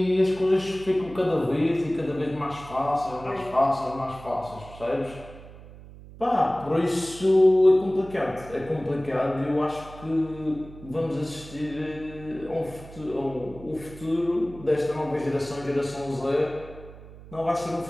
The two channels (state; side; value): noise; right; hum, 17 dB below the sound